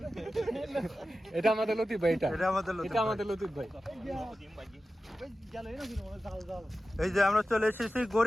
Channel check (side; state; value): both; normal; correlation 0.94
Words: এটা আমাদের লতিফ ভাই, এটা আমাদের লতিফ ভাই। এই যে আমরা চলে এসেছি